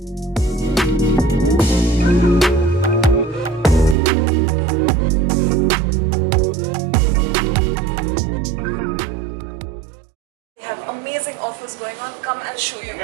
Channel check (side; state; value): left; drops out; at 4.0 s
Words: They have amazing offers going on. Come, I'll show you.